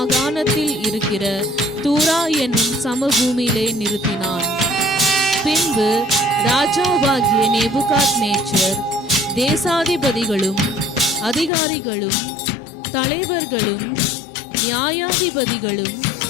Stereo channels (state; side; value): drops out; right; at 11.5 s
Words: இருக்கிற தூரா என்னும் சமபூமியிலே நிறுத்தினான். பின்பு ராஜாவாகிய நேபுகாத்நேச்சர் தேசாதிபதிகளும் அதிகாரிகளும் தலைவர்களும் நியாயாதிபதிகளும்